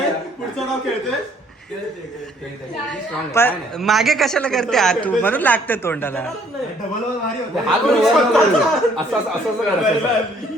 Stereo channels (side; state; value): both; normal; correlation 0.63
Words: पुढचं नाव खेळतेस? पण मागे कशाला करते हा तू, म्हणून लागते तोंडाला. डबल भारी होता. हात वर वर असं असं असं करा.